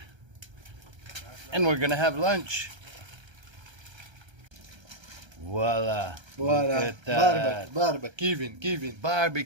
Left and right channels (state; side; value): late; left; 1.3 ms